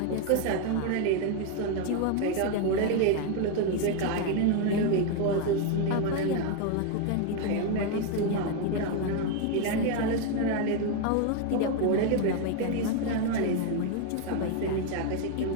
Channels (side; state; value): both; different; correlation 0.01